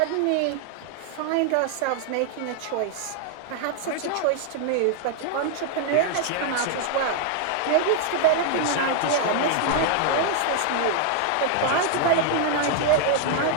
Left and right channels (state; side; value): different; both; correlation 0.00